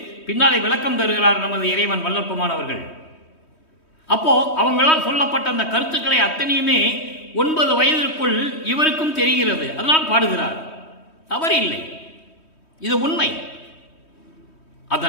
பின்னாலே விளக்கம் தருகிறார் நமது இறைவன் வல்லற்பமானவர்கள். அப்போ அவங்களால் சொல்லப்பட்ட அந்த கருத்துக்களை அத்தனையுமே 9 வயதிற்குள் இவருக்கும் தெரிகிறது. அதனால் பாடுகிறார். தவறு இல்லை, இது உண்மை.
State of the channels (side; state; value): right; late; 3.2 ms